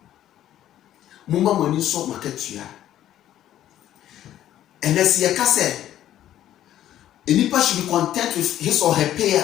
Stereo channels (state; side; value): quieter; right; 12.2 dB